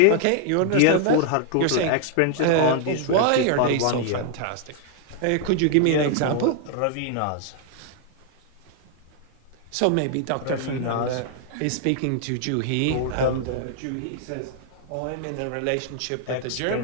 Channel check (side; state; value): both; different; correlation 0.00